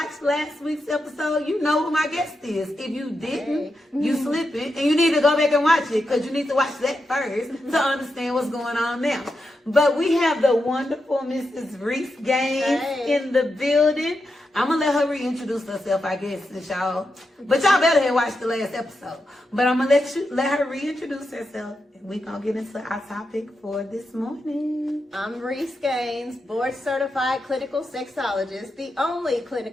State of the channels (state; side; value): normal; both; correlation 0.87